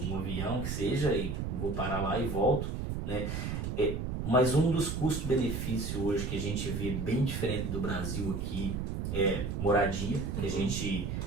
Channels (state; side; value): noise; right; rumble, 3 dB below the sound